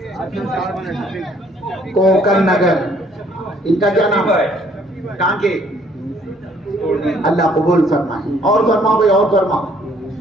کوکر نگر. ان کا کیا نام ہے؟ کہاں کے؟ اللہ قبول فرمائے. اور فرماؤ بھائی، اور فرماؤ.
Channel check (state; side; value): normal; both; correlation 0.63